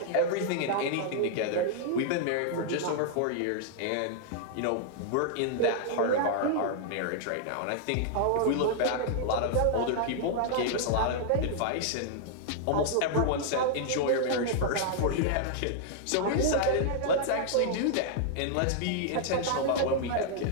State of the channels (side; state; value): both; different; correlation -0.01